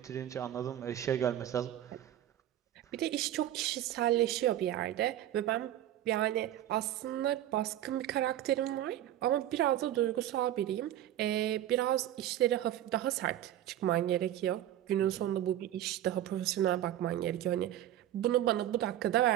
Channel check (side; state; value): left; quieter; 12.4 dB